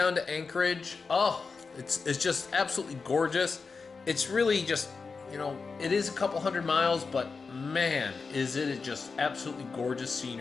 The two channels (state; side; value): quieter; right; 4.7 dB